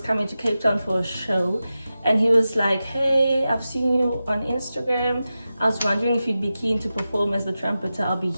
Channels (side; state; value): both; inverted; correlation -0.93